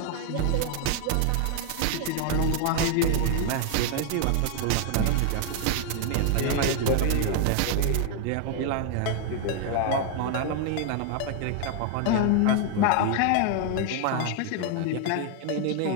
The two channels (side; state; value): both; different; correlation 0.00